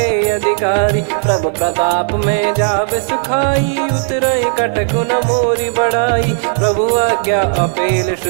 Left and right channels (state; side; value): silent; left; digital silence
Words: अधिकारी। प्रभु प्रताप में जाब सुखाई, उतरई कटक न मोरी बढ़ाई। प्रभु आज्ञा अपेल